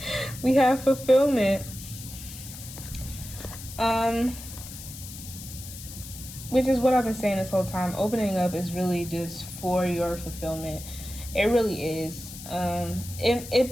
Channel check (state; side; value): noise; left; hiss, 13 dB below the sound